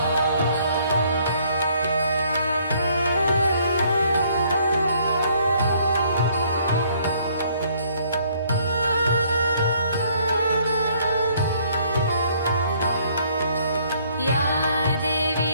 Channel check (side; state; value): both; inverted; correlation -0.64